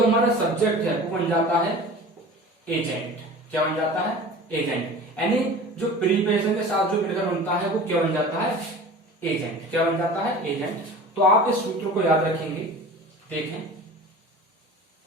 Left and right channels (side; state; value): both; normal; correlation 0.38